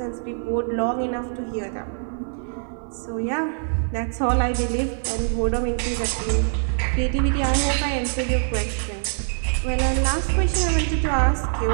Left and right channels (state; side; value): silent; left; 63 dB below the other